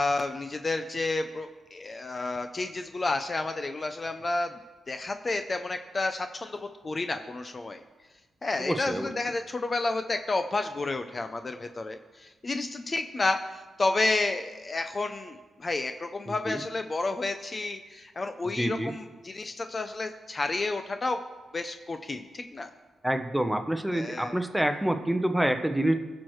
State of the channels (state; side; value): normal; both; correlation 0.94